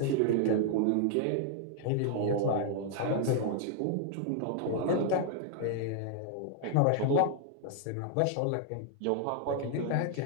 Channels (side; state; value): both; different; correlation 0.00